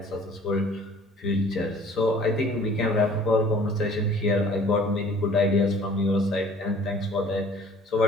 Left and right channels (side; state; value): both; normal; correlation 0.52